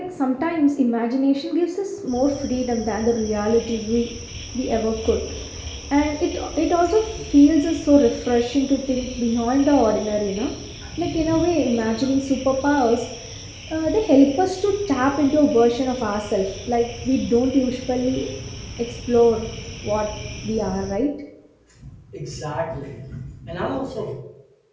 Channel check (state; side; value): identical; both; correlation 1.00